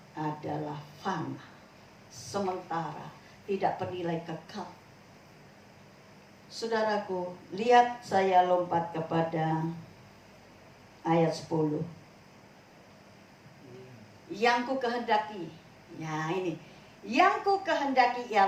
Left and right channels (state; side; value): identical; both; correlation 1.00